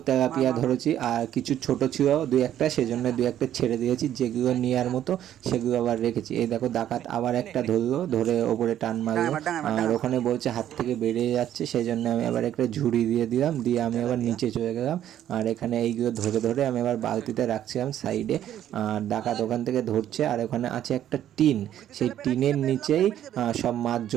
তেলাপিয়া ধরেছি। করেছি। আর কিছু ছোট ছিল দুই একটা, সেজন্য দুই একটা ছেড়ে দিয়েছি, যেগুলো নেওয়ার মতো সেগুলো আবার রেখেছি। এই দেখো ডাকাত আবার একটা ধরলো, ধরে ওপরে টান মারলো, আর ওখানে বলছে হাত থেকে বেরিয়ে যাচ্ছে, সেই জন্য আমি আবার একটা ঝুড়ি দিয়ে দিলাম, দিয়ে আমি আবার নিচে চলে গেলাম। আর এখানে এইগুলো ধরে ধরে আমি আবার বালতিতে রাখছিলাম সাইডে। আর ডাকাত ওখান থেকে ধরছে। আর ওখানে আছে একটা টিন, সেই টিনের নিচেই সব মাছ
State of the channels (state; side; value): quieter; left; 11.2 dB